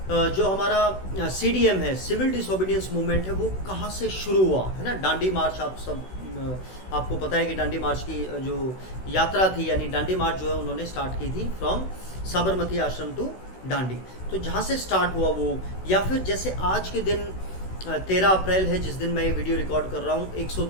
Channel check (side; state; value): right; late; 16 ms